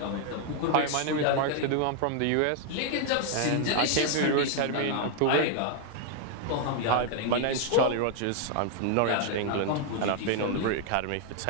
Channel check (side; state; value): both; different; correlation 0.00